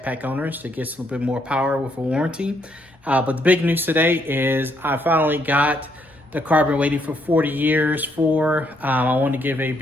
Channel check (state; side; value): normal; both; correlation 0.73